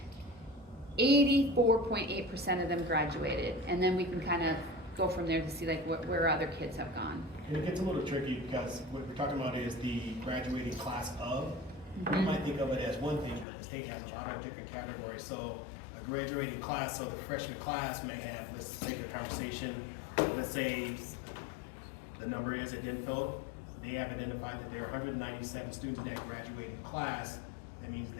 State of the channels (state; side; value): drops out; right; at 13.5 s